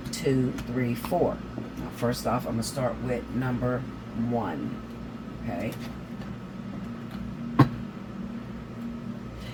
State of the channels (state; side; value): identical; both; correlation 1.00